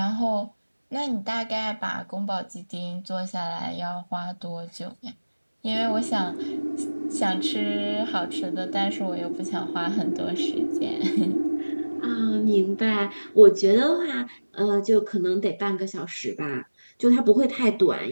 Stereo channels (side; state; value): both; inverted; correlation -1.00